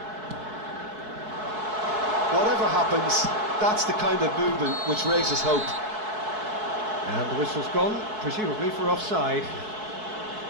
Whatever happens, that's the kind of movement which raises hope. And the whistle's gone, presumably for offside.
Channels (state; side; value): late; left; 4.6 ms